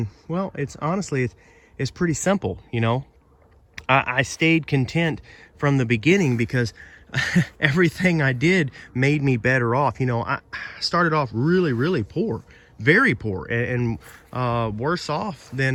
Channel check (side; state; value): both; identical; correlation 1.00